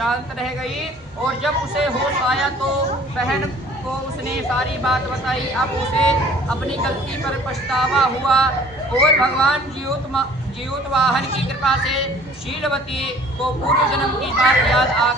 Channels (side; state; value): both; normal; correlation 0.52